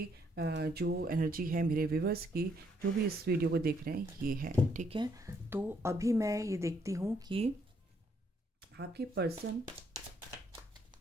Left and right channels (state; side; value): normal; both; correlation 0.71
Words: जो एनर्जी है मेरे व्यूवर्स की, जो भी इस वीडियो को देख रहे हैं, ये है, ठीक है। तो अभी मैं ये देखती हूँ कि आपके पर्सन